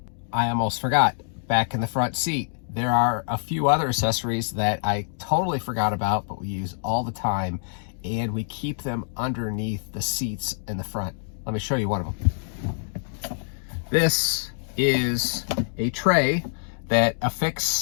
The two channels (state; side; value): silent; right; digital silence